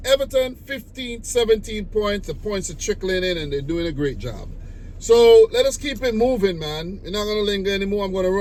Everton, 15, 17 points. The points are trickling in, and they're doing a great job. So let us keep it moving, man. We're not going to linger anymore. I'm going to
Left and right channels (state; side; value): identical; both; correlation 1.00